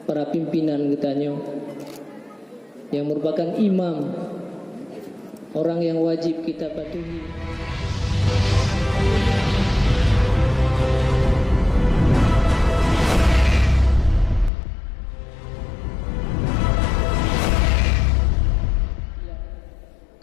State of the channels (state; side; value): drops out; right; at 14.5 s